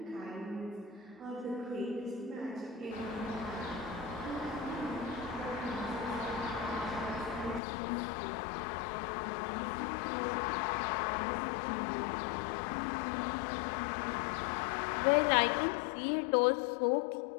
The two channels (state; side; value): drops out; right; at 7.6 s